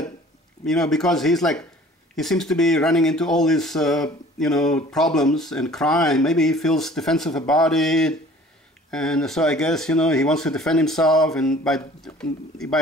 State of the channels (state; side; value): normal; both; correlation 0.50